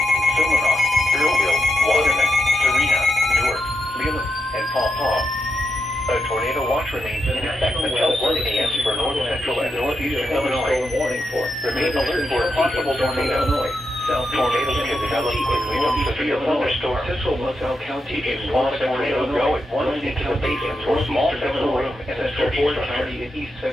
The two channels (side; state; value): both; normal; correlation 0.84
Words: Silverhawk, Earlville, Waterman, Serena, Newark, Leland, and Paw Paw. A tornado watch remains in effect until 1 a.m. for north central and northeastern Illinois. Remain alert for a possible tornado. Tornadoes can develop quickly from severe thunderstorms. Central LaSalle County is small tornadoes go at once into the basement or small central room and a Fort County in east